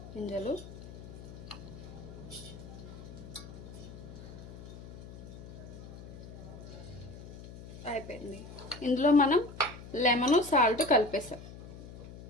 గింజలు. అయిపోయింది. ఇందులో మనం లెమన్ సాల్ట్ కలిపేసాం.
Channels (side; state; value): left; noise; hum, 14 dB below the sound